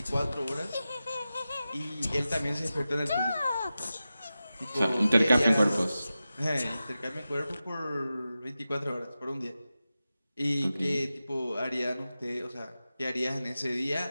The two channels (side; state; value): both; inverted; correlation -0.93